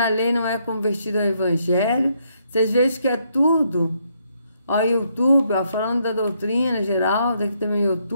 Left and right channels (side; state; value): both; inverted; correlation -0.74